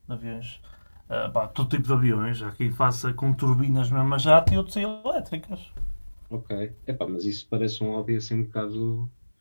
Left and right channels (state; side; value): inverted; both; correlation -1.00